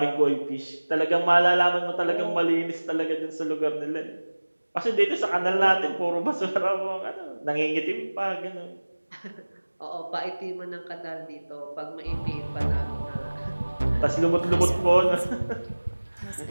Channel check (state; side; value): inverted; both; correlation -1.00